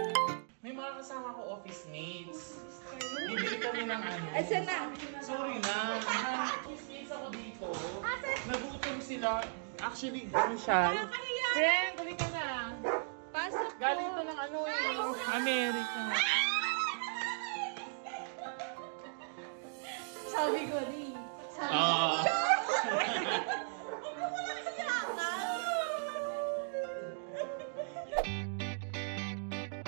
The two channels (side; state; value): left; silent; digital silence